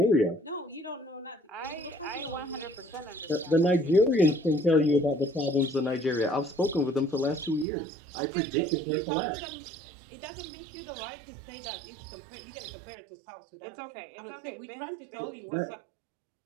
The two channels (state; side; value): drops out; left; at 7.7 s